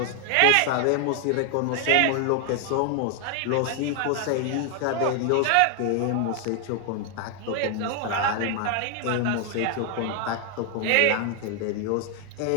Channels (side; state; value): both; different; correlation 0.00